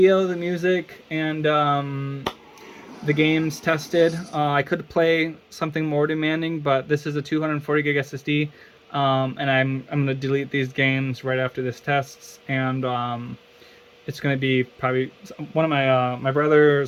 the music, and the games tested. I could play something more demanding, but this is a 240 gig SSD, and I'm going to delete these games right after this tests, and it's going to be probably one of my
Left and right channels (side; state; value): both; identical; correlation 1.00